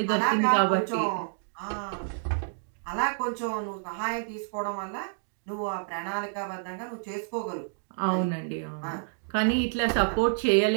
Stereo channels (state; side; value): silent; left; digital silence